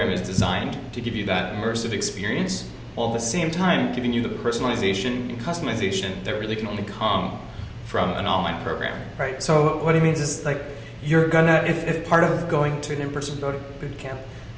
is designed to give you that immersive experience while at the same time giving you the personalization and customization that really can only come from an online program. Right. So what he means is like you're gonna, if part of going to an in-person boot camp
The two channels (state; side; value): identical; both; correlation 1.00